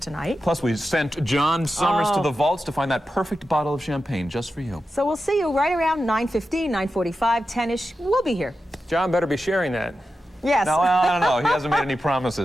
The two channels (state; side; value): normal; both; correlation 0.91